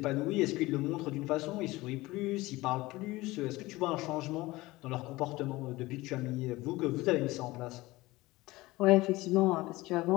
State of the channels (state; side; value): quieter; right; 19.8 dB